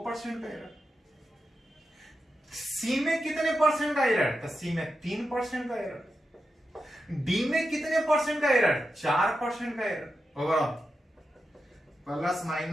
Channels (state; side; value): normal; both; correlation 0.88